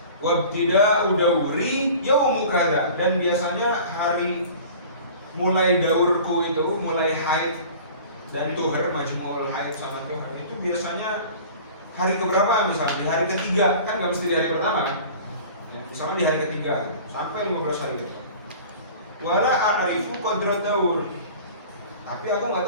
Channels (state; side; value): inverted; both; correlation -0.43